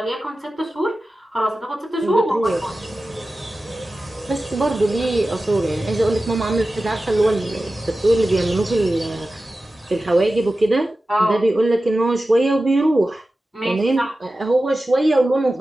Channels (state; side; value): normal; both; correlation 0.94